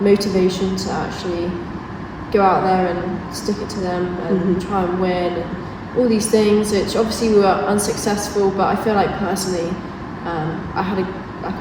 motivation to actually go out there and stick it to them and try and win and all these things, which obviously we were unsuccessful, but I feel like personally I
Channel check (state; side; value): identical; both; correlation 1.00